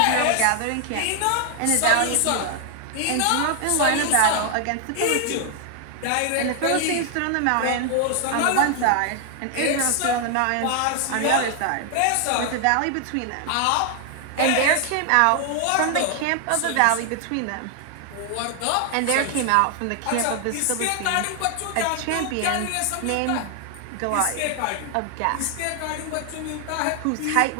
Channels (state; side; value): different; both; correlation 0.00